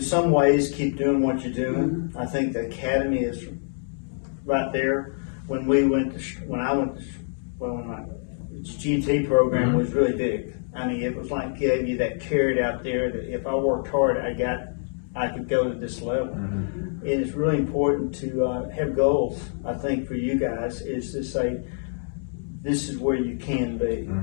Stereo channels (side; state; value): right; silent; digital silence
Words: some ways, keep doing what you're doing. I think the academy is right there. When my GT program was really big. I mean, it was like gave you that carrot out there that if I worked hard, I could go to this level. And it's really important to have goals. I think for you guys is to say, this is where you can be,